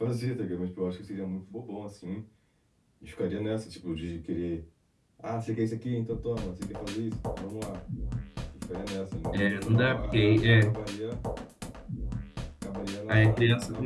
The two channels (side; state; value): both; identical; correlation 1.00